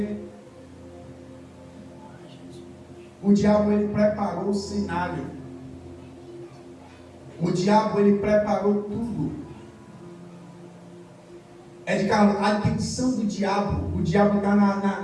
O diabo, ele preparou o cenário. O diabo, ele preparou tudo. É de cara, a intenção do diabo. O diabo está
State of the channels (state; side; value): identical; both; correlation 1.00